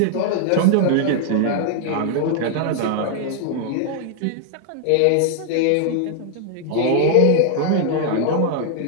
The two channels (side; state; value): both; different; correlation -0.01